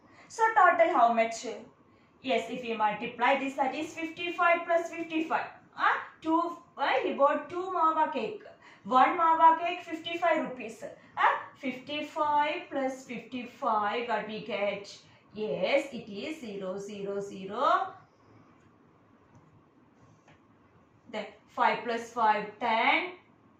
So total how much? Yes, if we multiply this, that is 55 plus 55. He bought 2 mawa cake. 1 mawa cake 55 rupees. 55 plus 55, what we get? Yes, it is 0, 0, 0. Then 5 plus 5, 10.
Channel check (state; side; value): identical; both; correlation 1.00